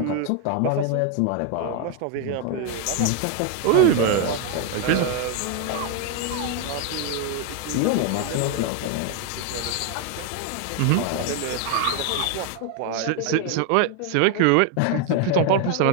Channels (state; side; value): different; both; correlation 0.01